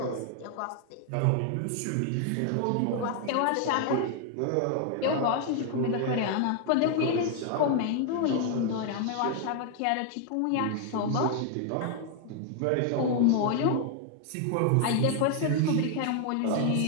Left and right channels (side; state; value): both; different; correlation 0.00